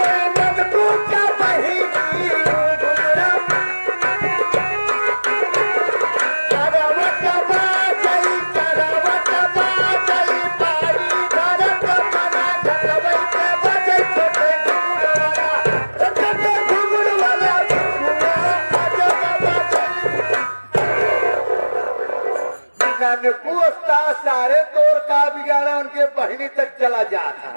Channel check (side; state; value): both; inverted; correlation -1.00